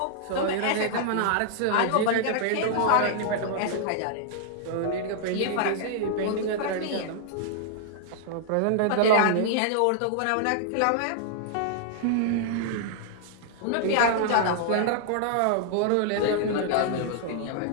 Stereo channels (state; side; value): different; both; correlation -0.01